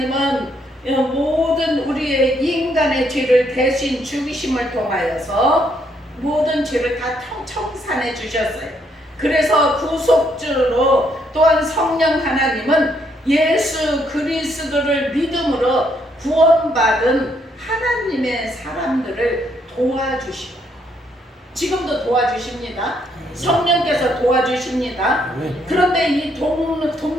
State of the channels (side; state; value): both; normal; correlation 0.72